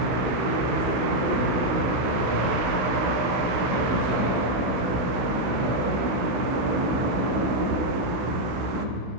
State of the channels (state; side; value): late; left; 16 ms